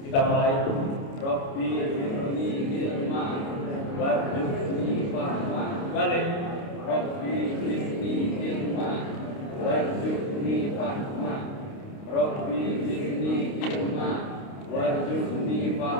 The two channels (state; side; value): late; right; 29 ms